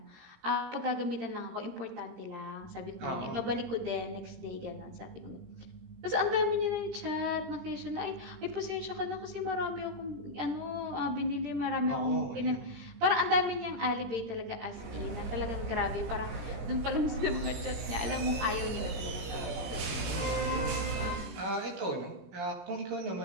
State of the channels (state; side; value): late; left; 17 ms